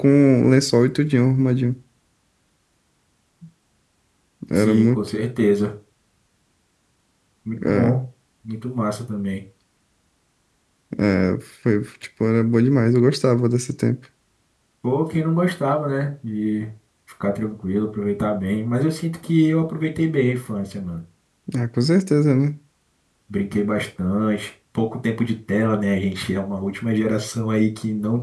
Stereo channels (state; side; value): identical; both; correlation 1.00